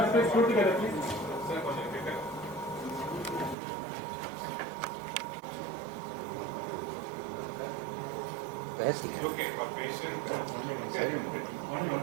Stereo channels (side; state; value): left; drops out; at 3.6 s